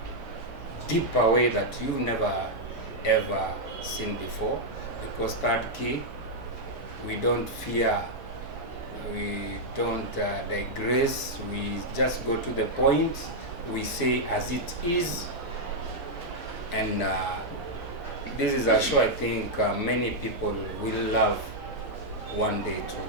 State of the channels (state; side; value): noise; right; hum, 18 dB below the sound